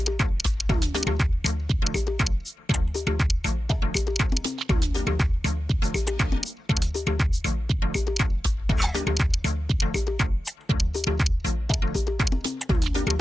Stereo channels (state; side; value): normal; both; correlation 0.94